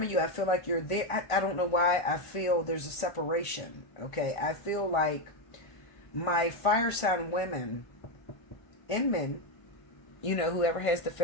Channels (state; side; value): late; right; 1.5 ms